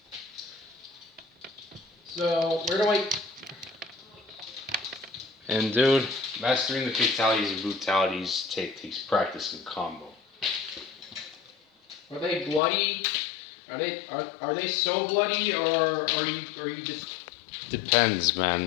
So, where do I... And dude, mastering the fatalities and brutalities takes practice and combo. Are they bloody? Are they so bloody, or are you just... Depends,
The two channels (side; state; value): right; drops out; at 12.6 s